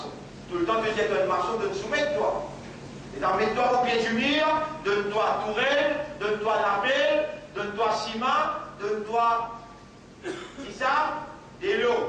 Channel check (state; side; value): identical; both; correlation 1.00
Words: Tout le temps que tu es un maçon, de te soumettre toi. Et mets-toi au pied du mur, donne-toi tourelle, donne-toi lapel, donne-toi ciment, donne-toi. C'est ça? Des